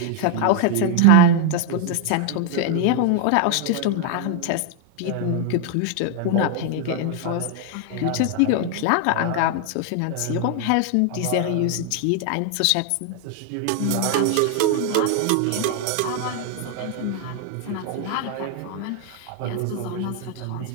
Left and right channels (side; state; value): both; different; correlation 0.00